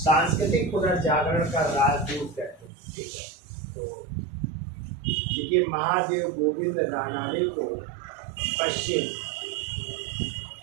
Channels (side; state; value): left; drops out; at 2.7 s